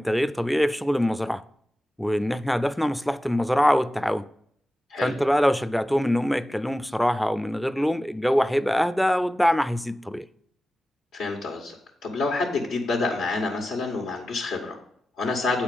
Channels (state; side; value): normal; both; correlation 0.94